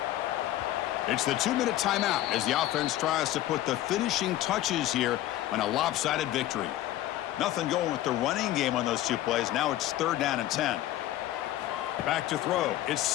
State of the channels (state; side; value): quieter; right; 14.1 dB